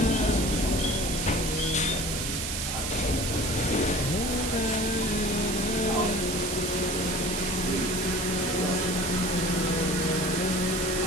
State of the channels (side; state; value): right; noise; hiss, 3 dB below the sound